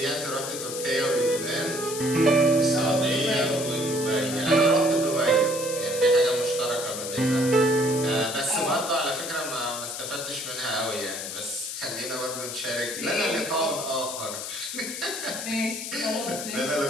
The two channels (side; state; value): left; noise; hiss, 7 dB below the sound